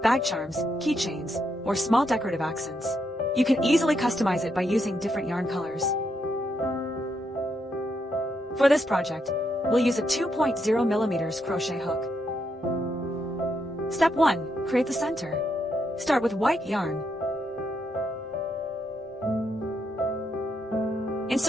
bag charms, keychains, or small decorative accents. You can easily customize it by using different yarn colors. For this project, we'll use a 2.0mm crochet hook. Step 1. Create the center. Start with white yarn.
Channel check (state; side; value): normal; both; correlation 0.79